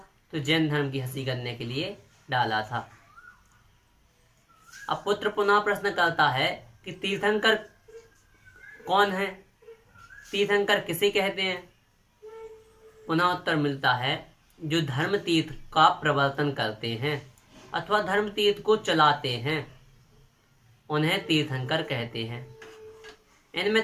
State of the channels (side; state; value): both; identical; correlation 1.00